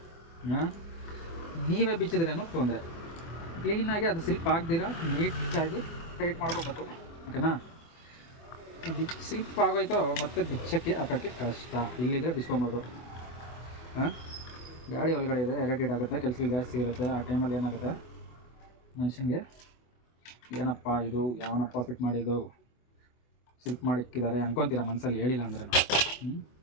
ನೀವೇ ಬಿಚ್ಚಿದ್ರೇನೋ ತೊಂದರೆ. ಕ್ಲೀನಾಗಿ ಅದು ಸ್ಲಿಪ್ ಆಗದಿರ ನೀಟಾಗಿ ಟೈಟ್ ಮಾಡ್ಕೋಬೇಕು, ಓಕೆನಾ. ಸ್ಲಿಪ್ ಆಗೋಯ್ತು ಮತ್ತೆ ಬಿಚ್ಚಕ್ಕೆ ಹಾಕೋಕ್ಕೆ ಕಷ್ಟ. ಇಲ್ಲಿದ್ರೆ ಬಿಚ್ಕೊಬೋದು. ಗಾಡಿ ಒಳಗಡೆ ಇದೆ, ಇರಿಟೇಟ್ ಆಗುತ್ತೆ, ಕೆಲಸಗಳು ಜಾಸ್ತಿ ಇರುತ್ತೆ. ಆ ಟೈಮಲ್ಲಿ ಏನಾಗುತ್ತೆ ಮನುಷ್ಯನಿಗೆ, ಏನಪ್ಪ ಇದು, ಯಾವನಪ್ಪ ಫಿಟ್ ಮಾಡಿದ್ದು, ಸ್ಲಿಪ್ ಮಾಡಿಕ್ಕಿದ್ದಾರೆ ಅನ್ಕೊತೀರ ಮನಸ್ಸಲ್ಲಿ, ಹೇಳಿಲ್ಲ ಅಂದ್ರೆ ನಾವು.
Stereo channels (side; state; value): right; late; 24 ms